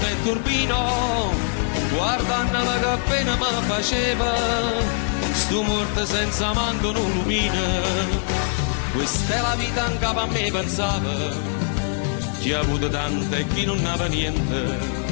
turbino, guardandola che appena mi faceva, stu morto senza manco un lumino. Questa è la vita anche a me pensava, chi ha avuto tante e chi non aveva niente.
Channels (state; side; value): silent; right; 64 dB below the other